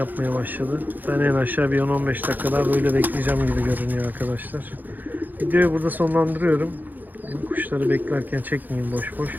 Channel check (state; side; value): late; left; 0.085 ms